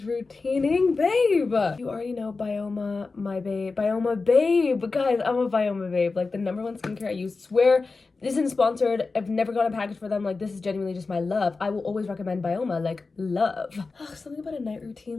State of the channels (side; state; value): right; quieter; 4.0 dB